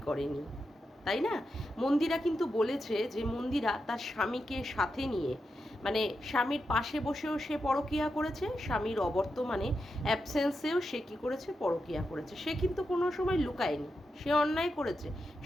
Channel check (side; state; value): both; normal; correlation 0.87